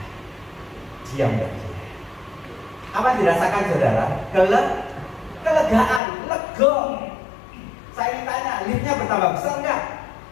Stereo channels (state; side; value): drops out; right; at 6.0 s